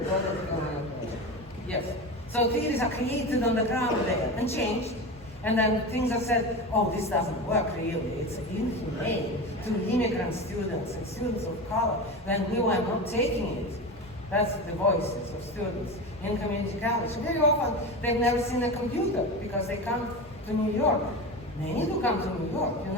a broader decolonial project. Yes. So theories are created on the ground there and changed. And then things are said, oh, this doesn't work really. It's inhumane to immigrant students and students of color. Then we were not taking it. That's the voices of students in community college. Very often, they've never seen a computer because they come to New York. Many do come to New York, you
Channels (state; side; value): normal; both; correlation 0.25